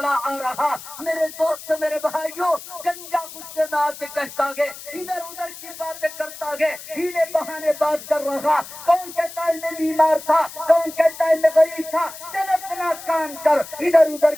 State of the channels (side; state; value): left; noise; hiss, 14 dB below the sound